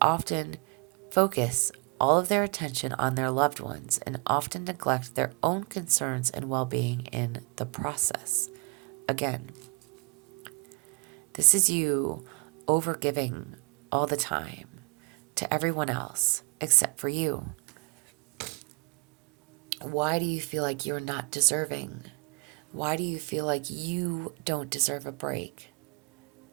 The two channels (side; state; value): left; quieter; 31.3 dB